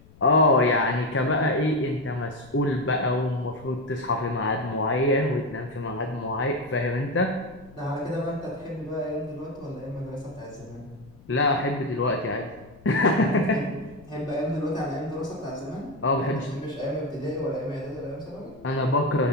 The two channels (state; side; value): noise; left; rumble, 24 dB below the sound